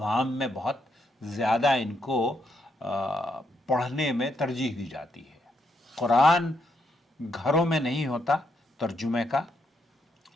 میں بہت زیادہ ان کو پڑھنے میں ترجیح دی جاتی ہے. قرآن گھروں میں نہیں ہوتا ترجمے کا.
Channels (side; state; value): both; normal; correlation 0.77